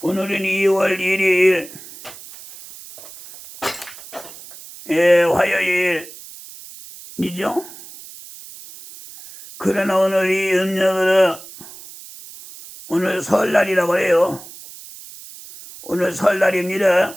1일, 화요일이죠. 그러나 오늘이 음력으로 오늘 설날이라고 해요. 오늘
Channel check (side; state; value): right; noise; hiss, 17 dB below the sound